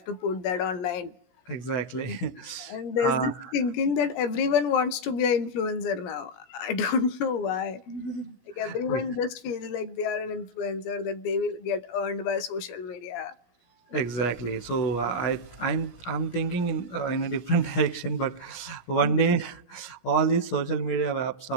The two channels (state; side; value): late; right; 17 ms